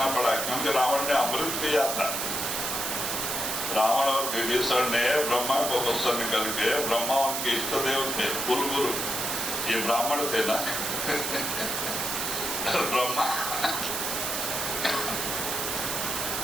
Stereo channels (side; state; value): right; noise; hiss, 1 dB below the sound